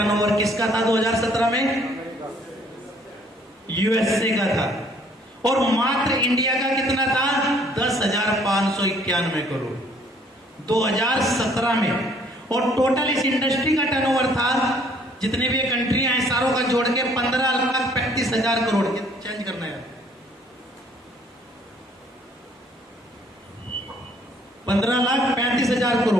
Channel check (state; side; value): normal; both; correlation 0.60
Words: किसका था 2017 में? USA का था। और मात्र इंडिया का कितना था? 10,591 करोड़ 2017 में। और टोटल इस इंडस्ट्री का टर्नओवर था, जितने भी कंट्रियां हैं सारों का जोड़ के 15,35,000 करोड़। चेंज करना है, 15,35,000